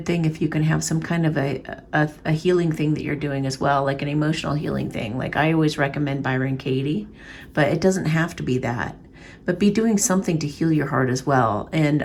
thing if you can have some kind of a healing thing that you're doing as well, like an emotional healing thing. Like I always recommend Byron Katie, but it doesn't have to be that. But be doing something to heal your heart as well.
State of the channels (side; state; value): both; identical; correlation 1.00